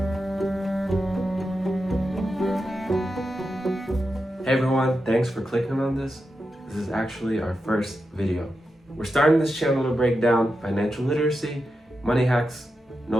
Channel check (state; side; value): normal; both; correlation 0.89